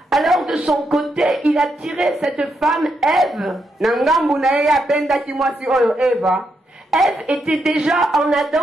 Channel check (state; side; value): normal; both; correlation 0.81